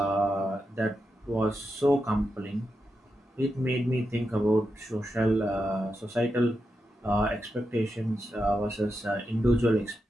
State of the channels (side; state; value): both; normal; correlation 0.87